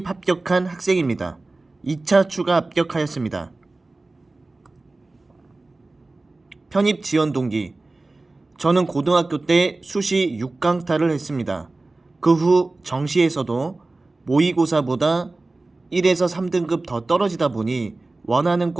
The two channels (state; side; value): quieter; left; 3.2 dB